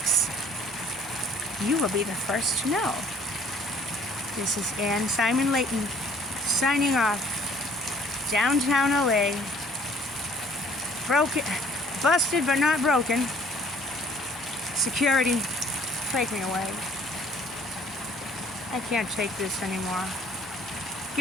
you will be the first to know. This is Ann Simon Layton signing off. Downtown LA. Broken, busted but not broken. Security, take me away. I can't take this anymore.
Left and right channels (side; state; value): both; normal; correlation 0.56